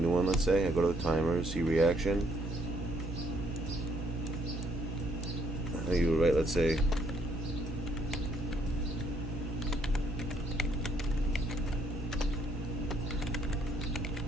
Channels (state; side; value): normal; both; correlation 0.69